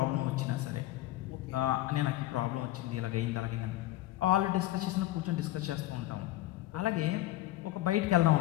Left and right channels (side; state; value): right; quieter; 15.9 dB